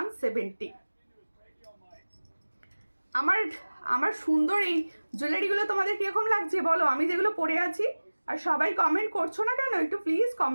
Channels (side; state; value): both; inverted; correlation -1.00